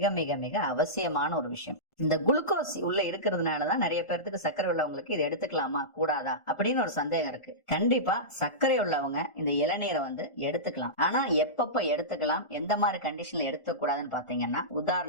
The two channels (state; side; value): late; right; 1.4 ms